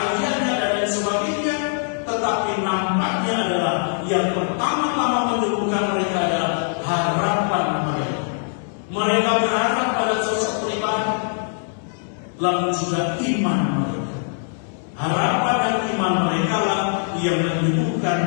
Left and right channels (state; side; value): silent; right; digital silence